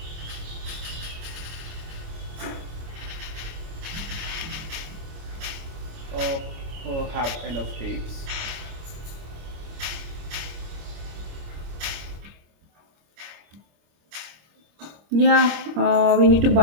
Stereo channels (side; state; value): left; late; 26 ms